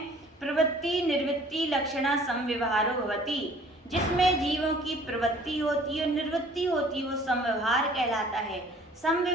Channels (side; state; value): both; normal; correlation 0.53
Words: प्रवृत्ति निवृत्ति लक्षणा समव्यवहारो भवति। जिसमें जीवों की प्रवृत्ति होती है और निवृत्ति होती है वो समव्यवहार कहलाता है।